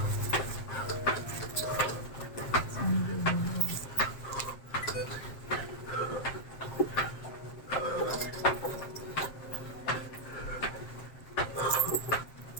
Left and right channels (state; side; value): late; right; 7.6 ms